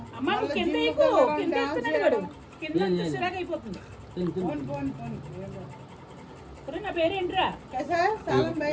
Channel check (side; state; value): both; identical; correlation 1.00